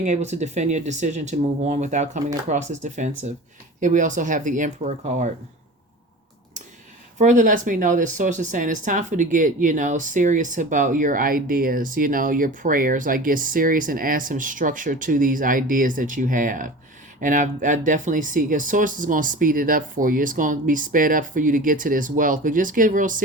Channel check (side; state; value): both; normal; correlation 0.36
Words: able to defend your decision to move on without coming across as defensive. Here we also have the Emperor card. Further lets me know that source is saying it's time for you to get, serious about your ideas, your prayers. Like, get serious and add some structure to these ideas that you have. And I definitely see, because source is going to speed it up for you. It's going to be sped up for you to get to this wealth. But just get real